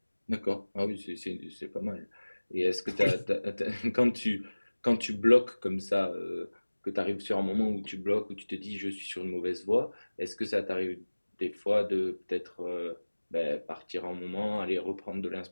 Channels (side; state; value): both; inverted; correlation -1.00